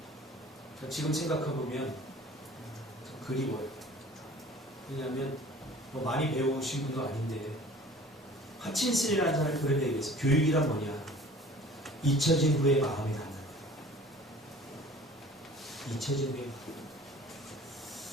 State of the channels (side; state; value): both; normal; correlation 0.47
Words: 지금 생각해보면 참 그리워요. 왜냐하면 뭐 많이 배우신 분도 아닌데 하친슨이라는 사람이 그런 얘기했어요. 교육이란 뭐냐? 잊혀진 후에 마음이 닿는 거예요. 잊혀진 후에